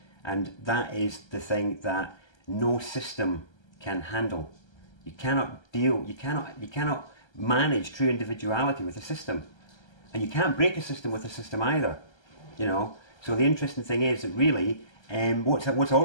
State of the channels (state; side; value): late; right; 1.3 ms